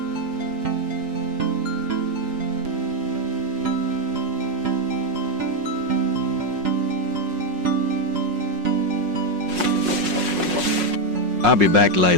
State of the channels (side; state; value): left; late; 5.5 ms